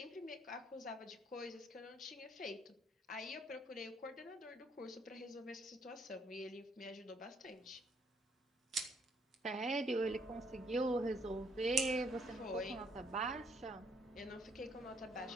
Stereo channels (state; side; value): normal; both; correlation 0.68